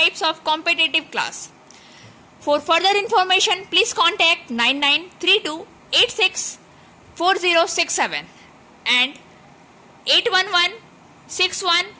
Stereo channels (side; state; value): both; identical; correlation 1.00